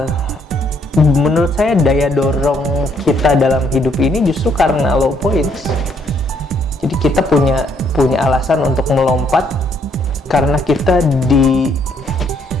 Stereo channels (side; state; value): both; normal; correlation 0.69